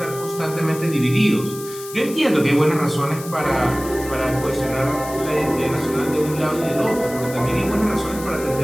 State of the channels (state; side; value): noise; left; hiss, 14 dB below the sound